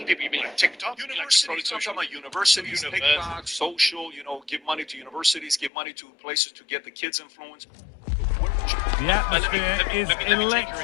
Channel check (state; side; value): drops out; right; at 5.7 s